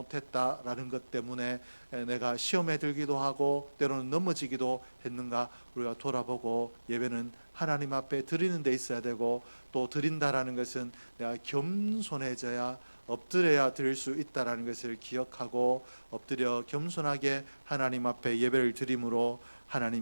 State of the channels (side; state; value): both; inverted; correlation -1.00